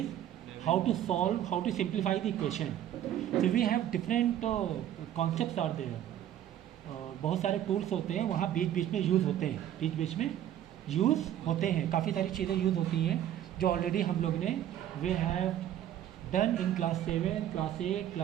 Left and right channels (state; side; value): quieter; left; 11.2 dB